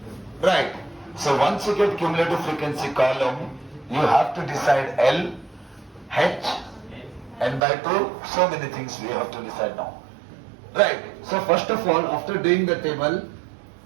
Right. So once you get cumulative frequency column, you have to decide L, H, N by 2, so many things we have to decide now. Right. So first of all, after doing the table,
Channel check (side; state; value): left; drops out; at 7.6 s